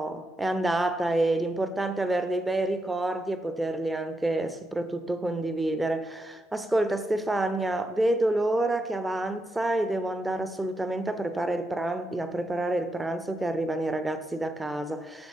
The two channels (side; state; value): both; normal; correlation 0.84